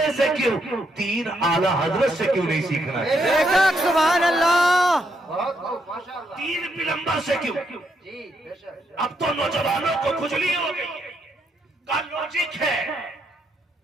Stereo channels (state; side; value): normal; both; correlation 0.77